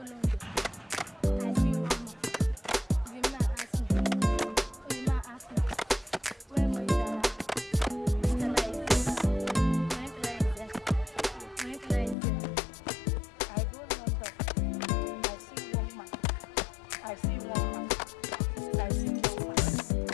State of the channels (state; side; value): drops out; right; at 12.2 s